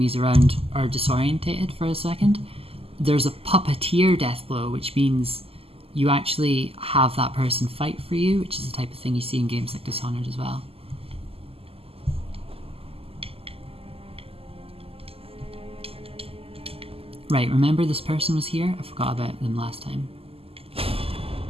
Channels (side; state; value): left; late; 0.28 ms